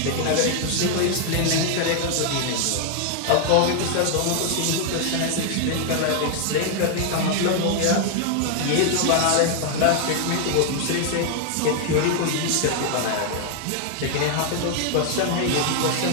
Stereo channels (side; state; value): both; different; correlation 0.00